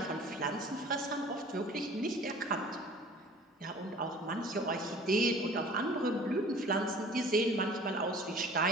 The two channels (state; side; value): normal; both; correlation 0.47